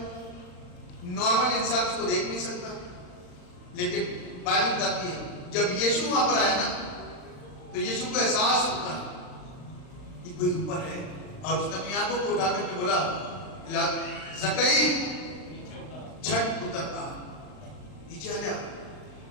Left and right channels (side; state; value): right; late; 39 ms